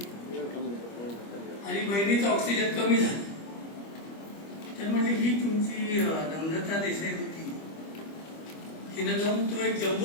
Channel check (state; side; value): late; right; 25 ms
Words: आणि बहिणीचा ऑक्सिजन कमी झाला. तर म्हणजे ही तुमची नम्रता देसाई होती, तिनं जाऊन तो एक